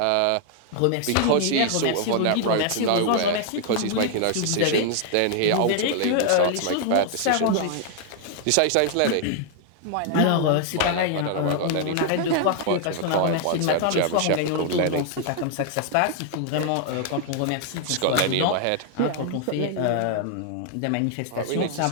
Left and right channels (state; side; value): different; both; correlation 0.00